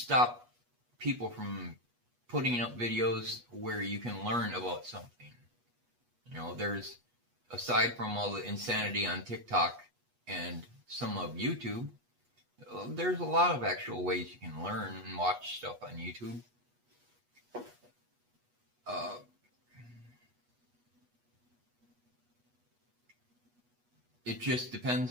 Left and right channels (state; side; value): late; left; 8.3 ms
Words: people from putting up videos where you can learn about something. There's, aside from all the insanity on TikTok and some of YouTube, there's a lot of actual ways you can learn and watch stuff on YouTube. It just depends